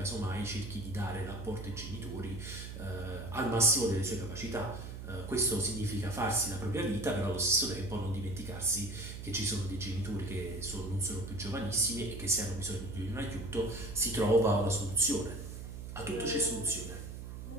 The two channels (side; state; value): right; noise; hum, 9 dB below the sound